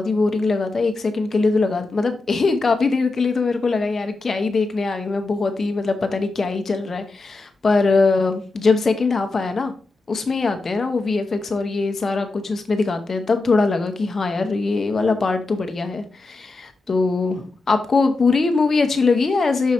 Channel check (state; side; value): quieter; right; 3.5 dB